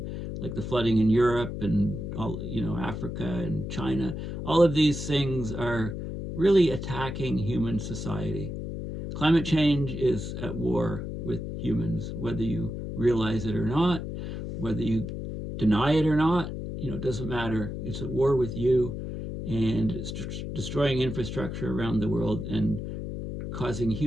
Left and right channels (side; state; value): left; noise; hum, 6 dB below the sound